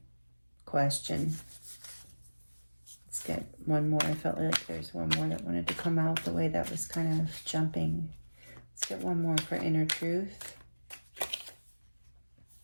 question. Let's get one more. I felt like there's one more that wanted to come out the way that was kind of jumping. Let's get one more for inner truth.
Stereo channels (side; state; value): both; inverted; correlation -1.00